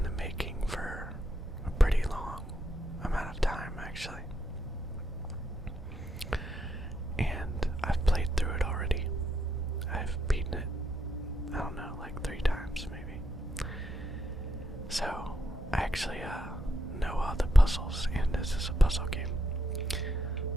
the making for a pretty long amount of time, actually. And I've played through it already. I've beaten it, I don't know, like 3 times maybe. So, I actually know all the puzzles, and this is a puzzle game.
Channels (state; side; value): normal; both; correlation 0.79